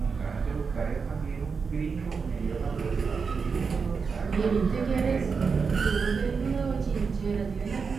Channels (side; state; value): left; quieter; 5.3 dB